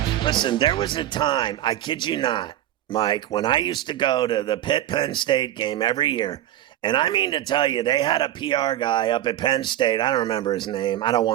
Listen, there was a time, I kid you not, Mike, when I used to go to the Pitt-Penn State game every year, and I mean to tell you, they had a PR guy up at Penn State. I don't remember his name. I don't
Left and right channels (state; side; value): quieter; left; 12.9 dB